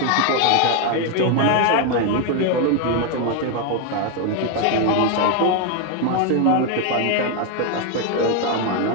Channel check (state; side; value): different; both; correlation 0.01